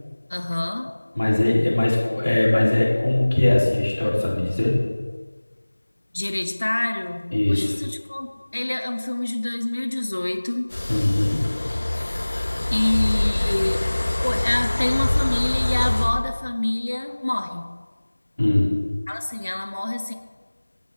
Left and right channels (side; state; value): both; inverted; correlation -1.00